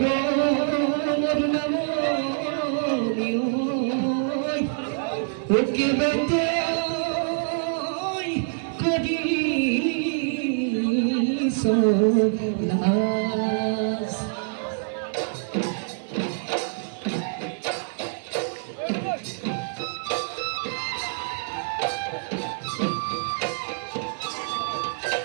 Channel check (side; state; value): left; silent; 57 dB below the other